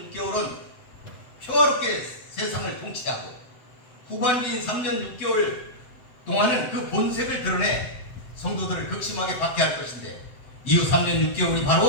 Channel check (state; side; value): late; right; 7.9 ms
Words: 6개월은 평화롭게 세상을 통치하고 후반기인 3년 6개월 동안은 그 본색을 드러내 성도들을 극심하게 박해할 것인데 이후 3년 6개월이